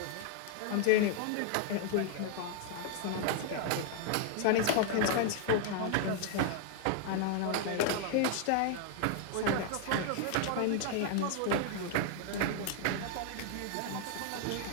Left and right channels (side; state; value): both; different; correlation 0.00